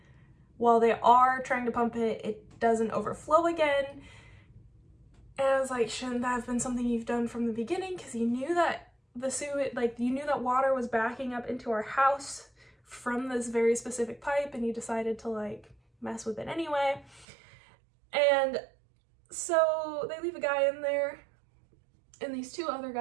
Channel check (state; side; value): drops out; left; at 17.2 s